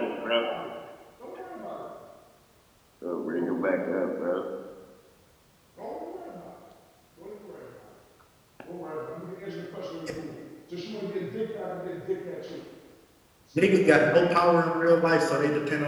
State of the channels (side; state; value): both; identical; correlation 1.00